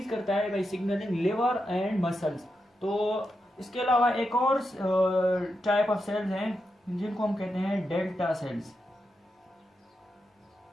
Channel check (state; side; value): normal; both; correlation 0.86